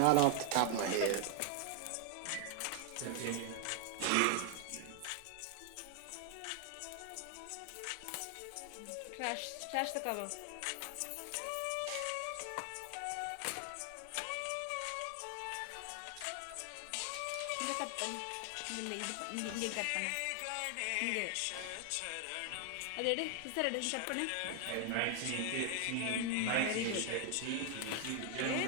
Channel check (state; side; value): different; both; correlation 0.00